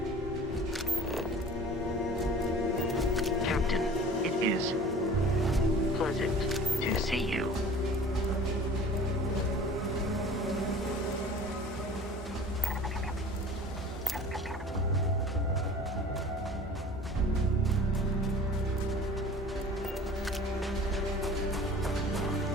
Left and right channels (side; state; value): both; normal; correlation 0.44